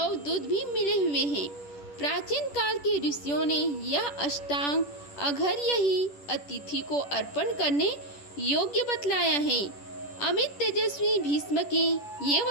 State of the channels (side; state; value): right; late; 10 ms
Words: दूध भी मिले हुए हैं। प्राचीन काल के ऋषियों ने यह अष्टांग अघर्य ही अतिथि को अर्पण करने योग्य बतलाया है। अमित तेजस्वी भीष्म के ये